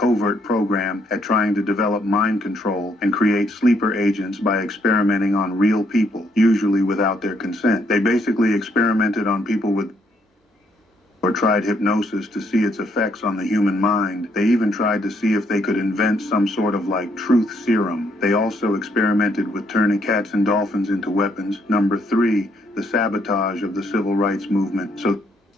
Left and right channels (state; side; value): normal; both; correlation 0.71